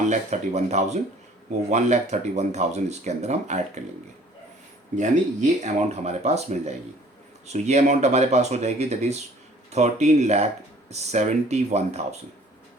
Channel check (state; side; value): normal; both; correlation 0.54